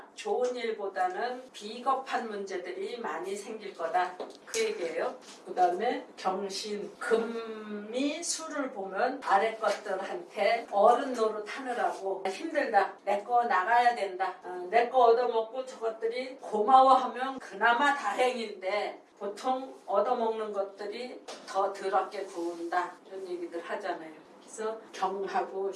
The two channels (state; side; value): identical; both; correlation 1.00